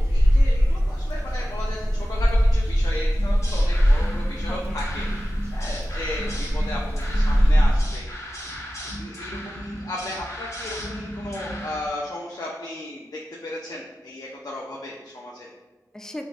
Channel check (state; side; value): normal; both; correlation 0.95